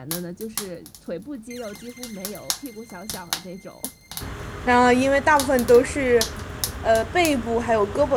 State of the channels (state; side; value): identical; both; correlation 1.00